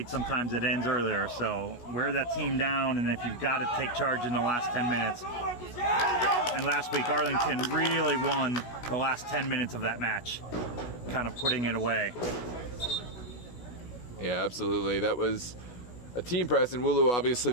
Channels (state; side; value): late; right; 16 ms